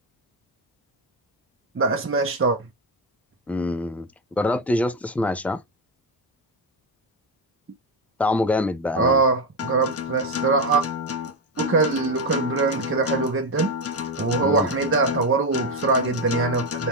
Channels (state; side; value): normal; both; correlation 0.10